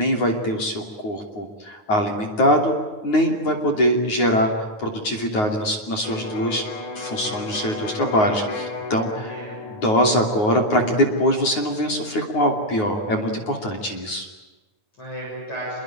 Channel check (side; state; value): right; late; 9.5 ms